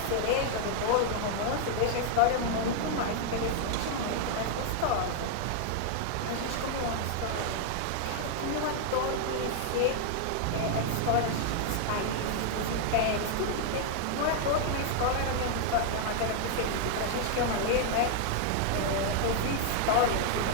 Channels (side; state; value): both; different; correlation 0.00